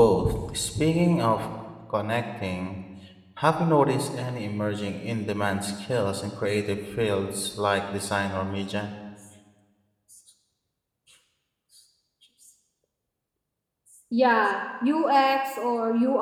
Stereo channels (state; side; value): identical; both; correlation 1.00